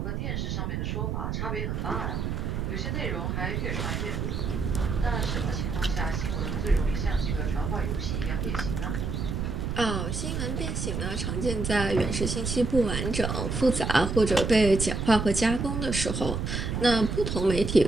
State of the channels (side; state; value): right; noise; rumble, 2 dB below the sound